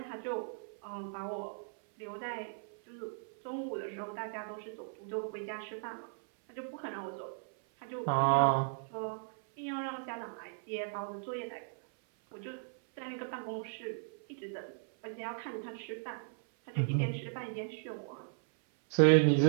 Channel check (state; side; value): silent; left; 54 dB below the other